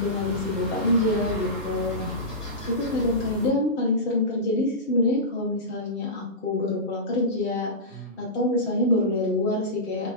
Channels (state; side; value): normal; both; correlation -0.17